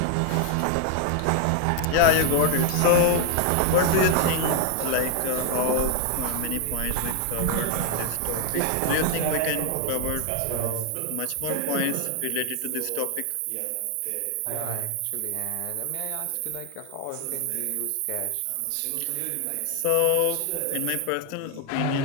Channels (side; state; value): both; different; correlation 0.00